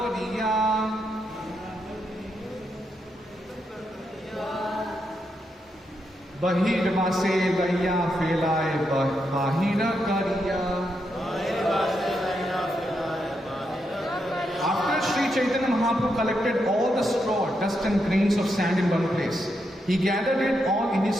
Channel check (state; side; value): normal; both; correlation 0.82